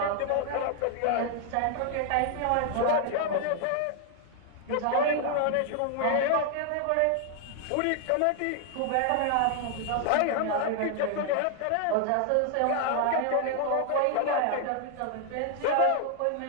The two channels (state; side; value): different; both; correlation 0.00